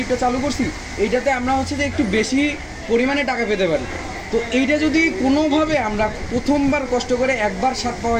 চালু করছি এইটাতে আমরা হচ্ছে যে একটু বেশি পরিমাণে টাকা পেতে পারি। তো এইটা যদি কোনোভাবে আমরা প্রথমবার কষ্ট করে একবার স্বাদ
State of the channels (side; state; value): both; identical; correlation 1.00